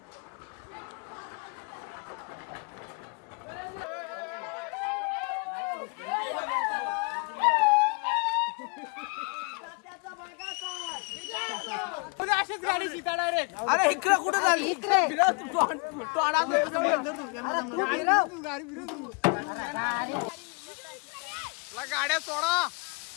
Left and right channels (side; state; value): right; quieter; 32.9 dB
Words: अरे इकडे कुठे झाली गाड्या सोडा.